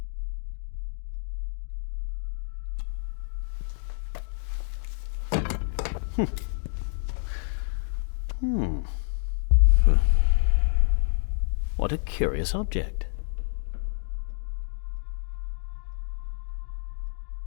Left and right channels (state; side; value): silent; right; digital silence